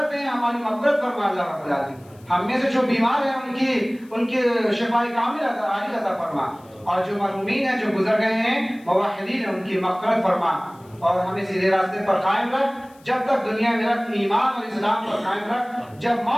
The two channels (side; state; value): left; noise; hiss, 29 dB below the sound